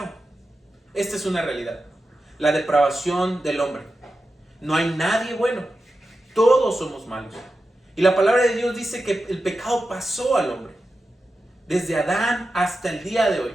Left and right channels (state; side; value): normal; both; correlation 0.91